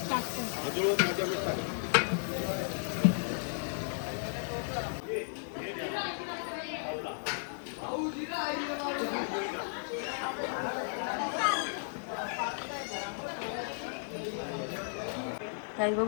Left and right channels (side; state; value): right; silent; digital silence